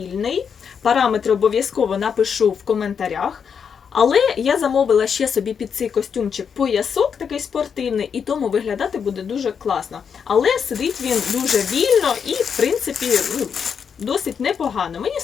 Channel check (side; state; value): right; quieter; 6.9 dB